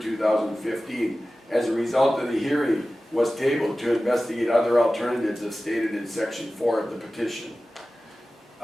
2015. As a result of the hearing, was tabled to investigate other alternatives as stated in section 4 of the petition.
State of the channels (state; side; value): normal; both; correlation 0.96